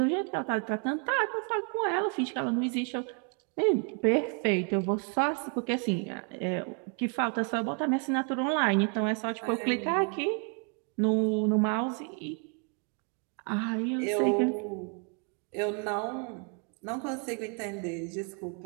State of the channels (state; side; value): quieter; left; 38.1 dB